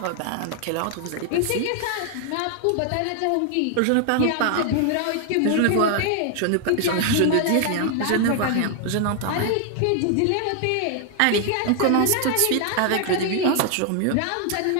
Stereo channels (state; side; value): different; both; correlation 0.00